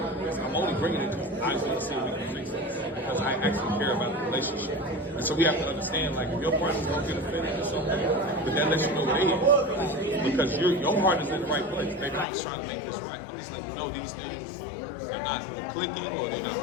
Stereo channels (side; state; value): right; drops out; at 12.2 s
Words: only bringing it because I want to see if we can fix this. Because I actually care about the relationship. And so we have to understand, like, if your partner's gonna get offended, it's okay. But that lets you know they is. Because your heart is in the right place. Baby, I'm just trying to make this right. I'm just letting you know these things are not clicking or they're not